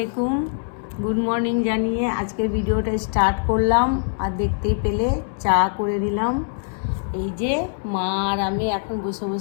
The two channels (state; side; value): silent; right; 63 dB below the other